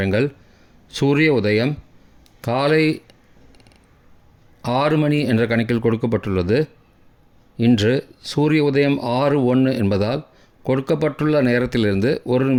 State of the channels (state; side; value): identical; both; correlation 1.00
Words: சூரிய உதயம் காலை 6 மணி என்ற கணக்கில் கொடுக்கப்பட்டுள்ளது. இன்று சூரிய உதயம் 6:01 என்பதால் கொடுக்கப்பட்டுள்ள நேரத்திலிருந்து 1